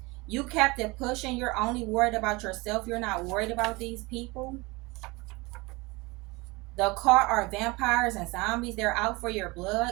You kept it pushing. You're only worried about yourself. You're not worried about these people. The caught are vampires and zombies. They're out for your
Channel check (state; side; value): quieter; left; 24.2 dB